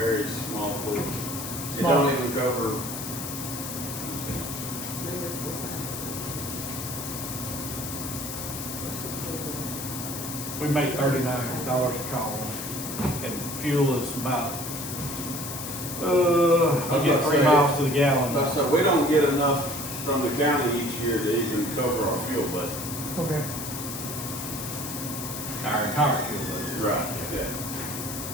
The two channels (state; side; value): noise; left; hiss, 7 dB below the sound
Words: small portion. It Small. don't even cover. We make $39 a call, and fuel is about, we get 3 miles to the gallon. Like I said, we don't get enough from the county each year to even cover our fuel budget. Okay. Our entire fuel budget. Right.